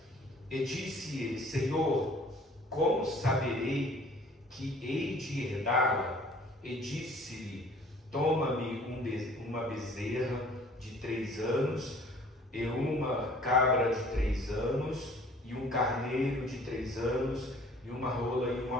E disse ele: Senhor, como saberei que hei de herdá-la? E disse-lhe: Toma-me uma bezerra de 3 anos, e uma cabra de 3 anos, e um carneiro de 3 anos, e uma rola e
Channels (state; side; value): normal; both; correlation 0.53